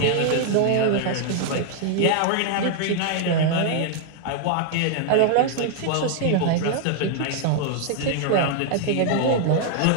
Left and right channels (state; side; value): different; both; correlation 0.00